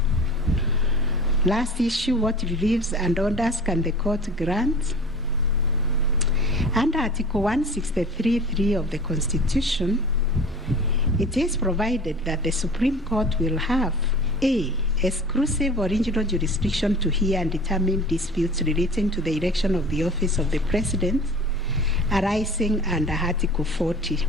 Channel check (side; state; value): both; normal; correlation 0.40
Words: Last issue, what reliefs and orders can the court grant? Under Article 163(3) of the Constitution, it is provided that the Supreme Court will have A. Exclusive original jurisdiction to hear and determine disputes relating to the election of the office of the President arising under Article